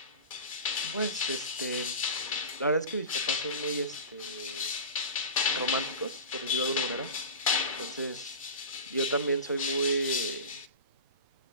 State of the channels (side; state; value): both; inverted; correlation -0.31